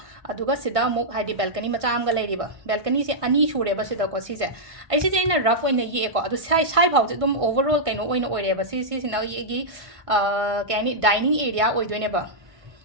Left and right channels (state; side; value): late; left; 1.5 ms